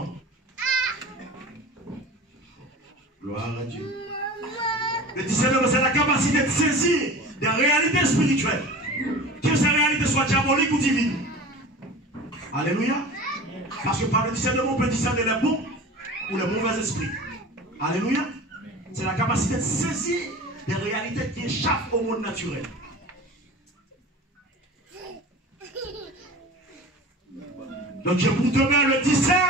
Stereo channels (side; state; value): both; normal; correlation 0.37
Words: Gloire à Dieu. Le discernement, c'est la capacité de saisir des réalités spirituelles. Que ces réalités soient diaboliques ou divines. Alléluia. Parce que par le discernement, on peut discerner les bons ou les mauvais esprits. Alléluia. C'est la capacité de saisir des réalités qui échappent au monde naturel. Donc je vous demande le